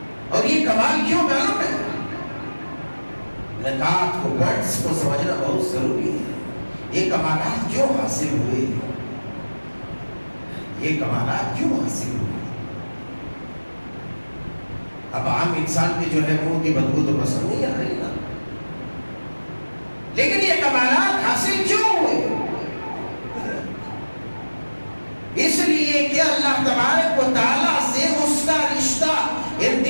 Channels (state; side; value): inverted; both; correlation -1.00